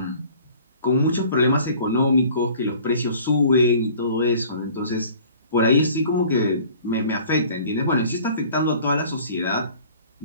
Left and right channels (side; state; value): both; inverted; correlation -0.50